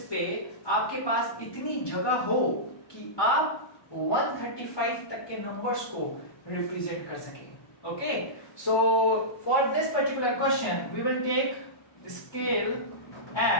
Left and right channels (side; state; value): right; late; 1.2 ms